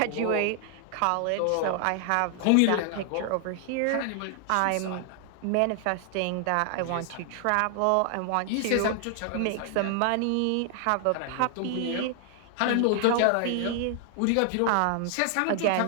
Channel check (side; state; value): both; different; correlation 0.00